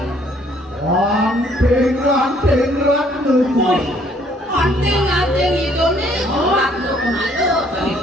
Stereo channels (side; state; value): both; normal; correlation 0.63